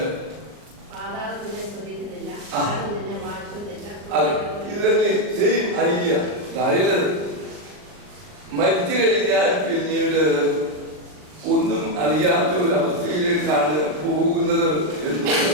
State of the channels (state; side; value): late; left; 39 ms